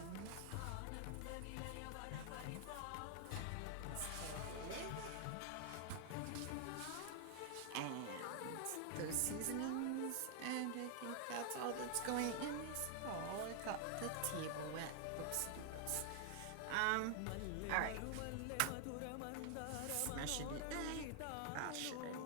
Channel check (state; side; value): different; both; correlation 0.00